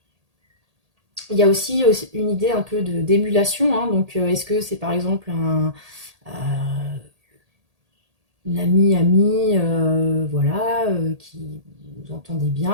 Il y a aussi une idée un peu d'émulation, hein, donc est-ce que c'est par exemple une amie, voilà, qui vous entendez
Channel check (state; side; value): late; left; 1.8 ms